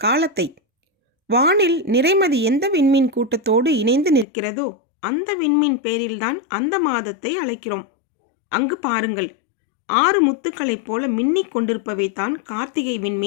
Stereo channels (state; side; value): drops out; right; at 4.2 s